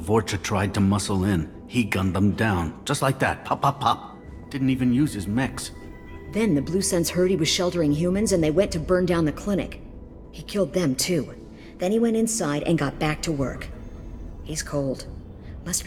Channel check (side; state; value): both; identical; correlation 1.00